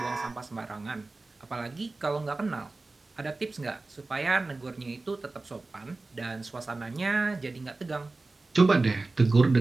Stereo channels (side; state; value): left; quieter; 3.4 dB